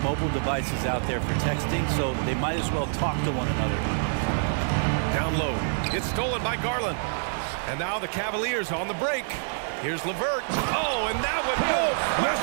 mobile devices out there for texting, so they might as well talk to one another. Down low. Gets stolen by Garland. And now the Cavaliers on the break. Here's LeVert. Oh, and that one, no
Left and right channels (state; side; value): silent; left; digital silence